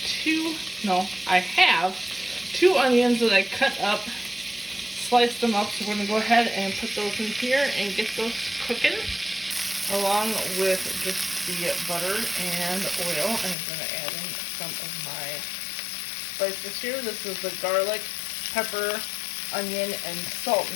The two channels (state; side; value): drops out; right; at 13.6 s